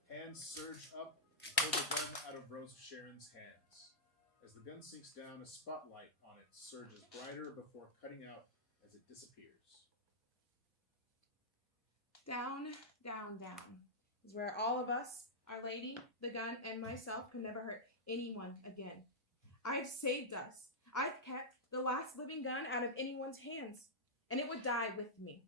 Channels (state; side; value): normal; both; correlation -0.09